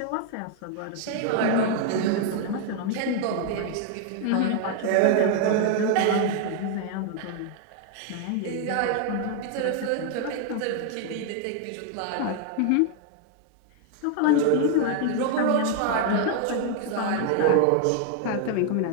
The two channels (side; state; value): both; different; correlation 0.00